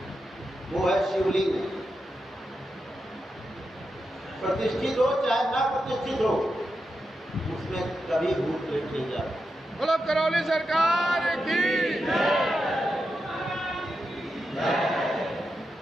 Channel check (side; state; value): both; normal; correlation 0.88